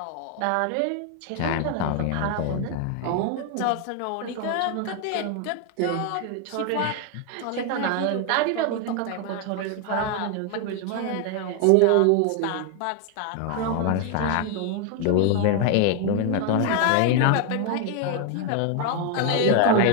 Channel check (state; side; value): different; both; correlation 0.01